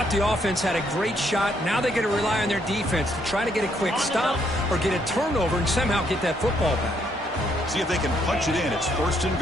the offense had a great shot. Now they got to rely on their defense to try to get a quick stop or get a turnover and somehow get that football back. See if they can punch it in. It's first and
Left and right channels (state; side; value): normal; both; correlation 0.72